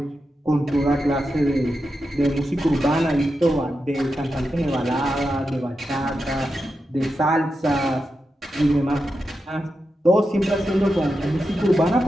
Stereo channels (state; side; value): normal; both; correlation 0.89